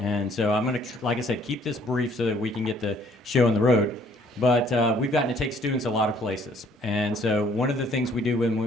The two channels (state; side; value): normal; both; correlation 0.61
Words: so I'm going to, like I said, keep this brief so that we can get the show on the road. But we've gotten to take students a lot of places. And so one of the things we do